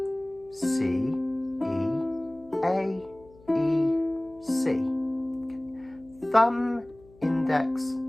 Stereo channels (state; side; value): noise; left; hum, 26 dB below the sound